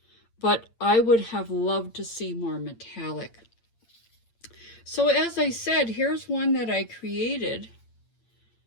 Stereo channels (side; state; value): right; late; 8.7 ms